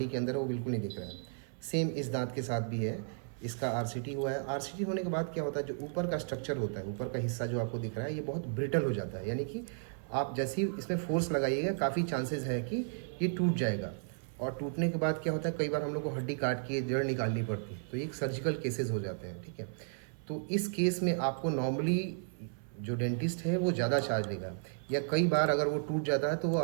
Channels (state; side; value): silent; left; 55 dB below the other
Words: के अंदर है वो बिल्कुल नहीं दिख रहा है। सेम इस दांत के साथ भी है, इसका आरसीटी हुआ है। आरसीटी होने के बाद क्या होता है, जो ऊपर का स्ट्रक्चर होता है, ऊपर का हिस्सा जो आपको दिख रहा है, ये बहुत ब्रिटल हो जाता है, यानी कि आप जैसे ही इसमें फोर्स लगाइएगा काफ़ी चांसेस है कि ये टूट जाएगा। और टूटने के बाद क्या होता है, कई बार हम लोग को हड्डी काट के जड़ निकालनी पड़ती है, तो ये सर्जिकल केसेस हो जाते हैं, ठीक है। तो इस केस में आपको नॉर्मली जो डेंटिस्ट है वो ज़्यादा चार्ज लेगा, या कई बार अगर वो टूट जाता है तो वो